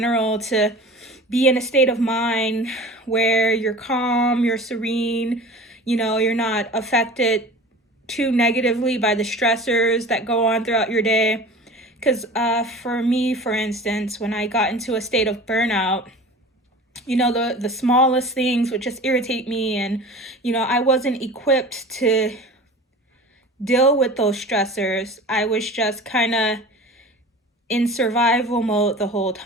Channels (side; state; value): both; normal; correlation 0.39